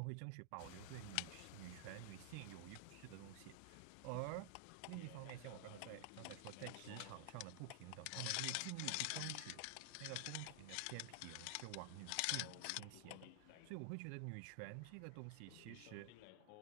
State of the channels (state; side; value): different; both; correlation 0.00